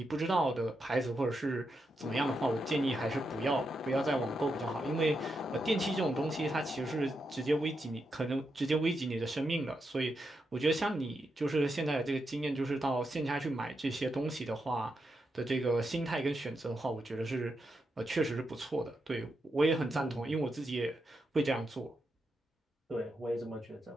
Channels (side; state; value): both; normal; correlation 0.85